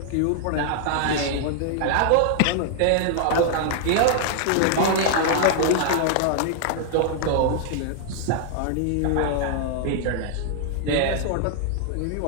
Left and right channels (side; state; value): both; different; correlation -0.01